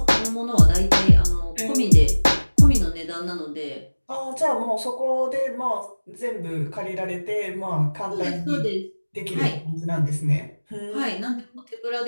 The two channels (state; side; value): inverted; both; correlation -1.00